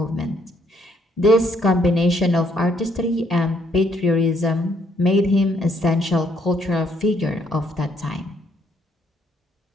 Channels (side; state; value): both; normal; correlation 0.69